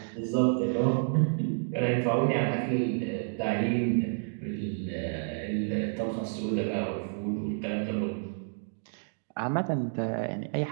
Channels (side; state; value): left; silent; digital silence